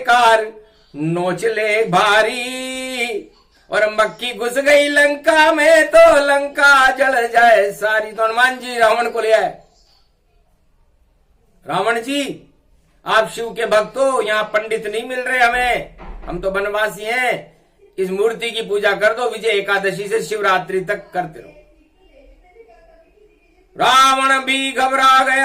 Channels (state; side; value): identical; both; correlation 1.00